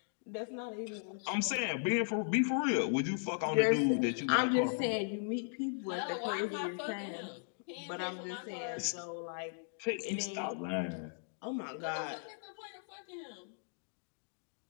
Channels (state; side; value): silent; right; digital silence